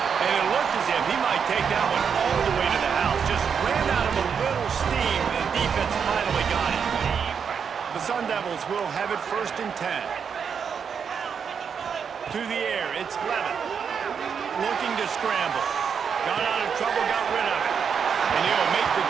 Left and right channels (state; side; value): quieter; left; 6.8 dB